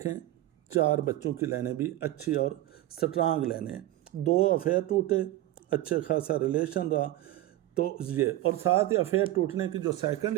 4 बच्चों की लाइनें भी अच्छी और स्ट्रांग लाइनें हैं। 2 अफेयर टूटे, अच्छे खासा रिलेशन रहा, तो ये, और साथ ही अफेयर टूटने की जो सेकंड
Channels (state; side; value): quieter; left; 15.4 dB